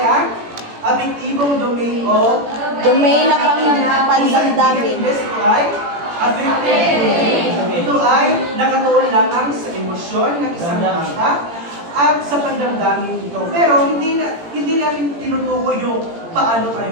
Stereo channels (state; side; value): late; left; 18 ms